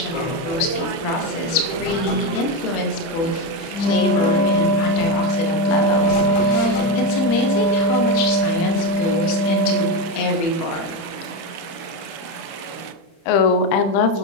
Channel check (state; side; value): late; right; 30 ms